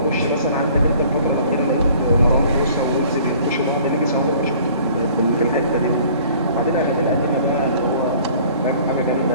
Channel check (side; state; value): both; inverted; correlation -0.53